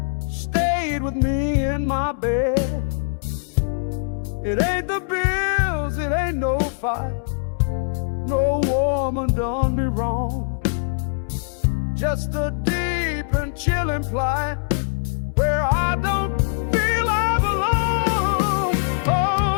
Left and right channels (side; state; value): right; silent; digital silence